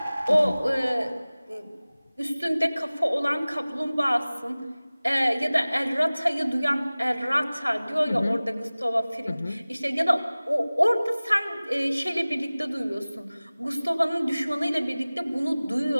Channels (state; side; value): inverted; both; correlation -0.99